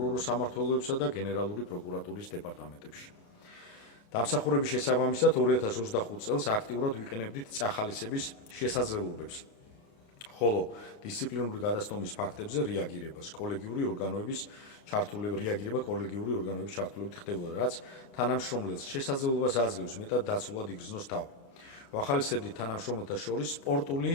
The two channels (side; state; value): right; late; 29 ms